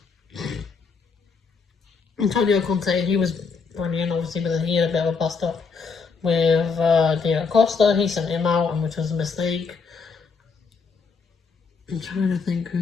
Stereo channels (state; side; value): quieter; right; 5.1 dB